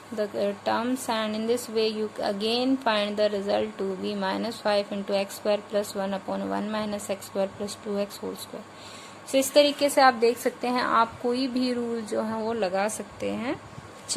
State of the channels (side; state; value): both; identical; correlation 1.00